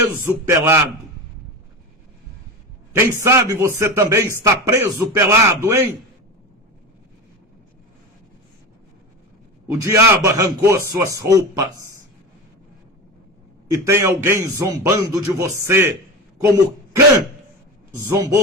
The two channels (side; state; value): both; normal; correlation 0.25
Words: pelado. Quem sabe você também está preso pelado, hein? O diabo arrancou suas roupas. E tem alguém zombando de você, como Cã